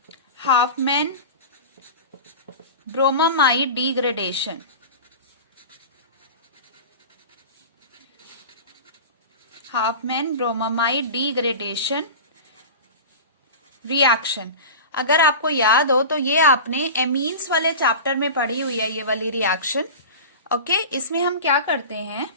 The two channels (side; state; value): both; inverted; correlation -0.31